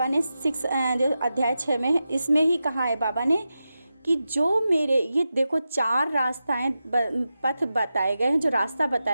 ने जो अध्याय 6 में है, इसमें ही कहा है बाबा ने कि जो मेरे ये देखो 4 रास्ताएं पथ बताए गए हैं, जो रास्ता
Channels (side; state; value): both; inverted; correlation -0.91